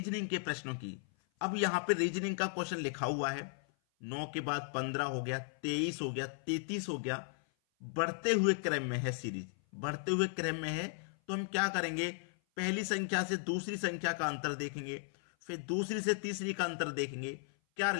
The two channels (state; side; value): silent; right; 54 dB below the other